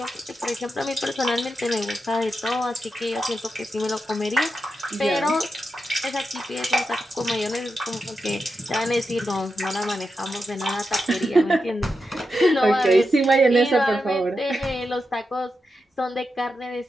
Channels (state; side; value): normal; both; correlation 0.88